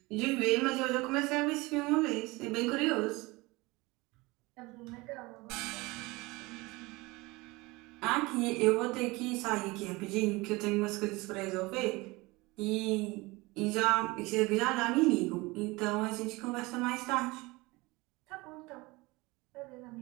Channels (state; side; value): quieter; left; 23.0 dB